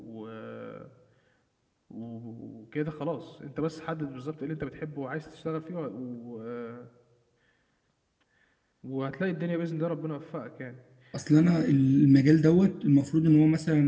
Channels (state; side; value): identical; both; correlation 1.00